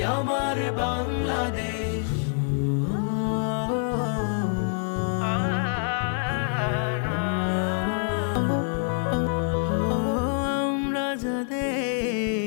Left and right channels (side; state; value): right; silent; 61 dB below the other